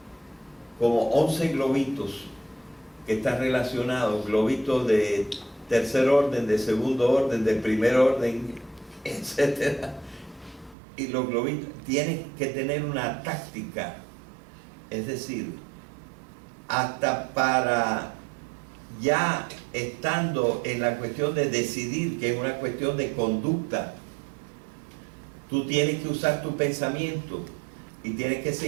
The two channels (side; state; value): left; drops out; at 10.8 s